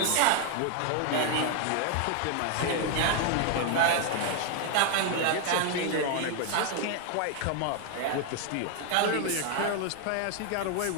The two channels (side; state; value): both; different; correlation 0.00